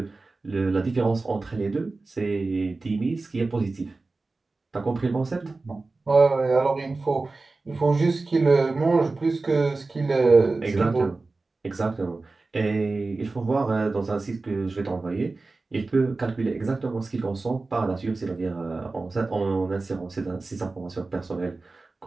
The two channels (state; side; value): quieter; left; 3.5 dB